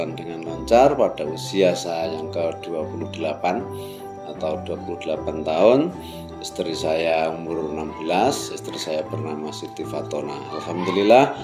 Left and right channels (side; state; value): both; identical; correlation 1.00